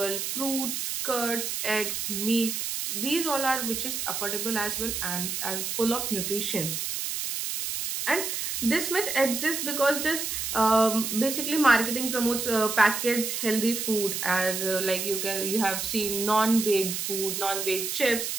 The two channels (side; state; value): right; noise; hiss, 3 dB below the sound